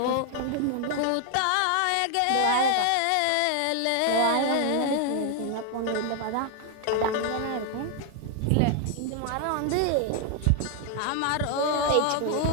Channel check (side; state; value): both; different; correlation 0.00